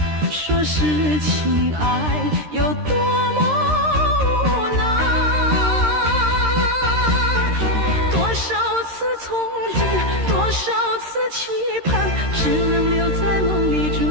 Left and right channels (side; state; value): left; late; 13 ms